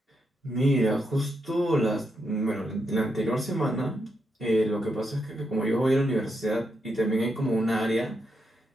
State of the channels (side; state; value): both; normal; correlation 0.82